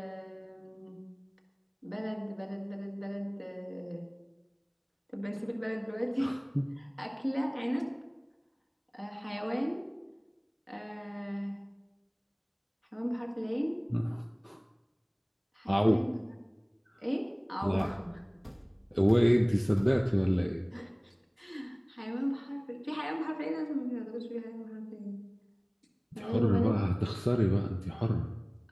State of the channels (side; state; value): both; identical; correlation 1.00